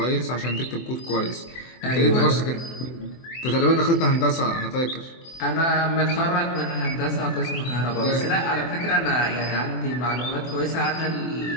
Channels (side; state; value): right; late; 24 ms